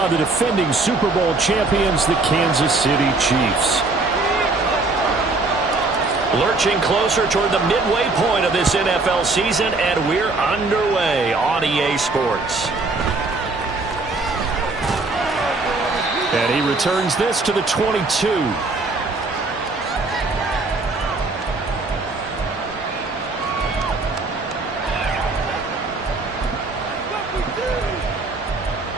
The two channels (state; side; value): quieter; left; 3.4 dB